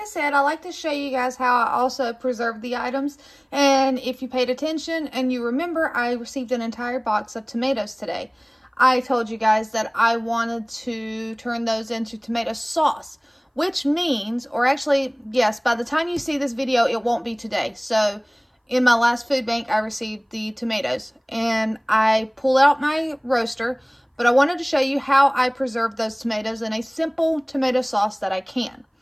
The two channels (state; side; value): identical; both; correlation 1.00